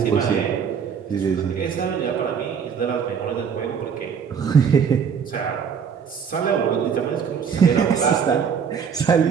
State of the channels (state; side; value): quieter; left; 6.9 dB